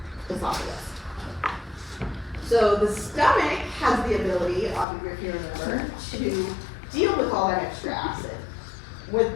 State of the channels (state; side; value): drops out; right; at 4.9 s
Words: esophagus. So the stomach has the ability, if you remember, to deal with all that extra acid